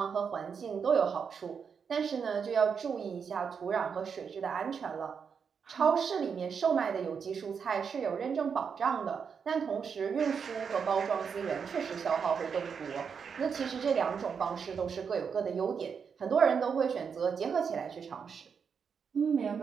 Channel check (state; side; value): quieter; left; 6.4 dB